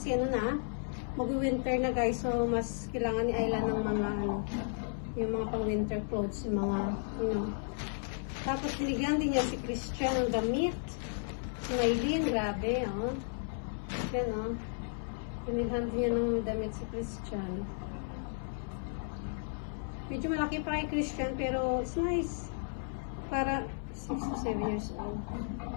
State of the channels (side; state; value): right; silent; 55 dB below the other